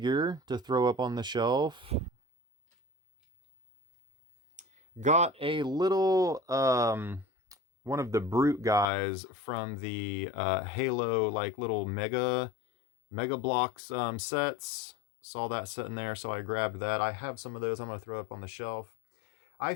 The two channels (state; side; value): drops out; right; at 8.8 s